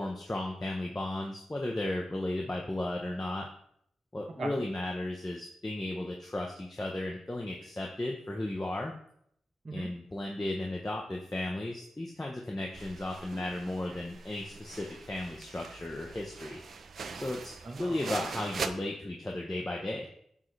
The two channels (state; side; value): normal; both; correlation 0.92